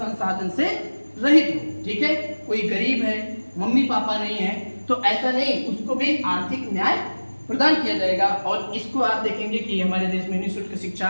से रहित हो। ठीक है, कोई गरीब है, मम्मी पापा नहीं है, तो ऐसा नहीं, उसको भी आर्थिक न्याय प्रदान किया जाएगा। और इसको आप देखेंगे कि हमारे देश में निःशुल्क शिक्षा,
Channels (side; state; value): both; inverted; correlation -1.00